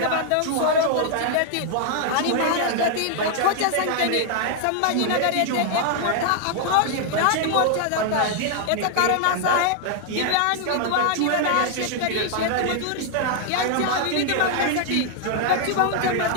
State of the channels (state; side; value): different; both; correlation 0.00